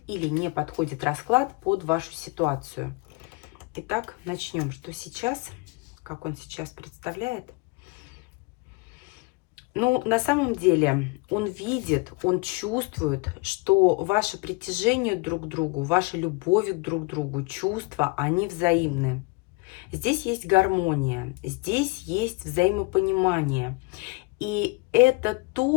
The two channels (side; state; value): right; quieter; 26.4 dB